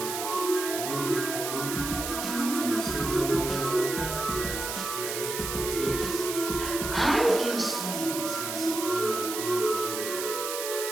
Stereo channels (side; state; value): right; noise; hiss, 4 dB below the sound